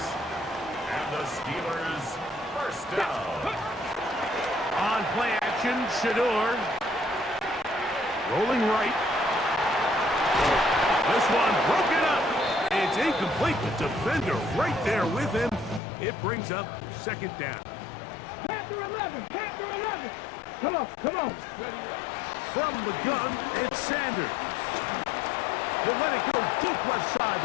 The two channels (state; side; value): drops out; right; at 15.8 s